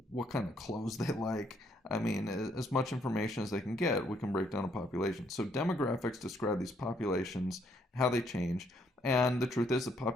what kind of clothes they like. I mean, as much information as they can get, we can break down a population. So demographics describe these populations, how they change, and the truth is that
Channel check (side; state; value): both; normal; correlation 0.70